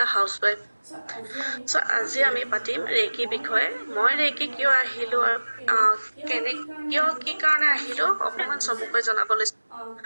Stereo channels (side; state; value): both; inverted; correlation -1.00